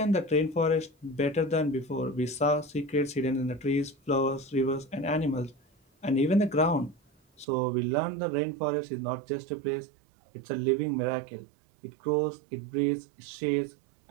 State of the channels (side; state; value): left; drops out; at 7.5 s